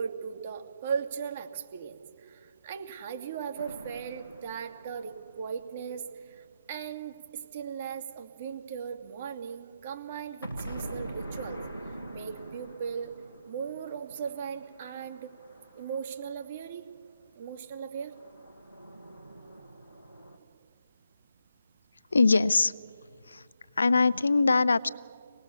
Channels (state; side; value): inverted; both; correlation -0.86